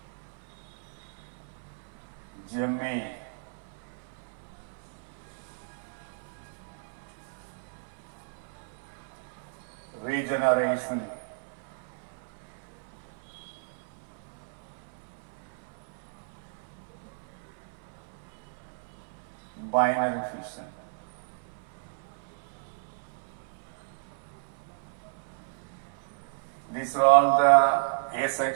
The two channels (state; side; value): silent; left; 56 dB below the other